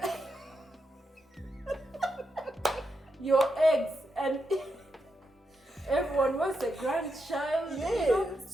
Your eggs, and everyone wants a grandchild. You know?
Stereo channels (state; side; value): normal; both; correlation 0.84